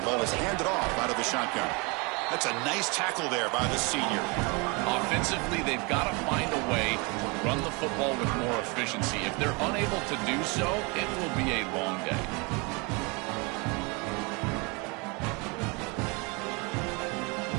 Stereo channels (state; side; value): quieter; left; 29.4 dB